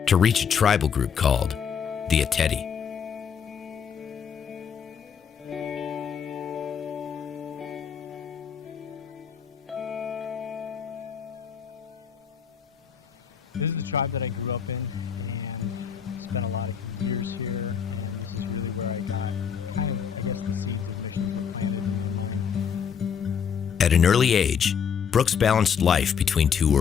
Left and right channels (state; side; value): quieter; right; 7.2 dB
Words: to reach a tribal group called the Ateti. At an early age, Brooks balanced life between two